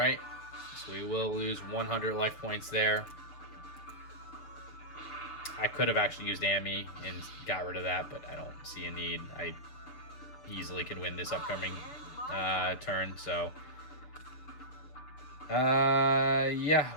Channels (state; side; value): late; right; 7.0 ms